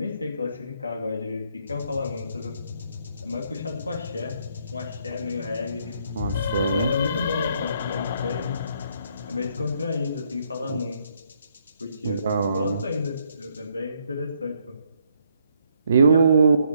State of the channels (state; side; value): inverted; both; correlation -0.71